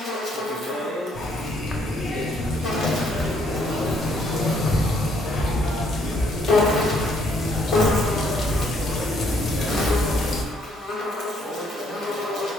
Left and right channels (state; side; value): normal; both; correlation 0.68